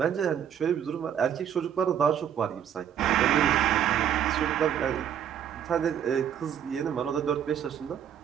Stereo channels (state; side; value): quieter; left; 9.2 dB